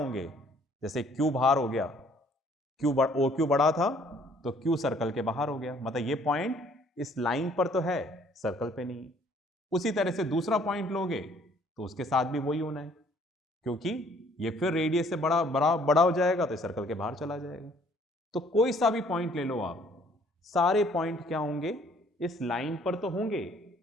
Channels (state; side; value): normal; both; correlation 0.60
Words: जैसे Q बाहर हो गया, OQ बड़ा था तो Q सर्कल के बाहर हो गया, मतलब ये पॉइंट इस लाइन पर तो है, सर्कल पे नहीं है। उसी तरह से दूसरा पॉइंट लोगे तो उसके साथ भी वही होना है, क्योंकि ये फिर रेडियस से बड़ा बड़ा बड़ा हो जाएगा तो सर्कल के बाहर चला जाएगा। तो कोई सा भी पॉइंट ले लो आप, सारे पॉइंट क्या होंगे? इस लाइन पर तो होंगे